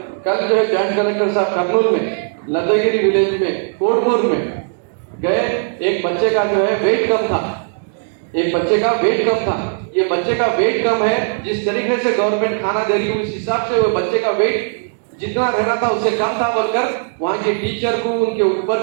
जो है जॉइंट कलेक्टर साहब कर्नूल में लद्दागिरी विलेज में कोटपुर में गए, एक बच्चे का जो है वेट कम था, एक बच्चे का वेट कम था। ये बच्चे का वेट कम है, जिस तरीके से गवर्नमेंट खाना दे रही है उस हिसाब से वो बच्चे का वेट जितना रहना था उससे कम था, बोलकर वहां के टीचर को, उनके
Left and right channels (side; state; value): left; silent; digital silence